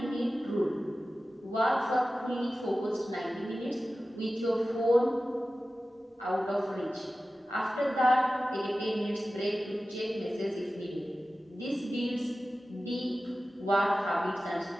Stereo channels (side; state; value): both; normal; correlation 0.95